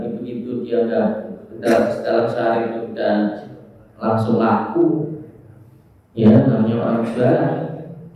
itu dia udah dalam sehari itu udah langsung laku. Ya, namanya orang jualan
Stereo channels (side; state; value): both; identical; correlation 1.00